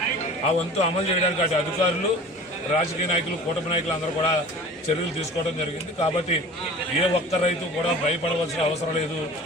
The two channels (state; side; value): normal; both; correlation 0.42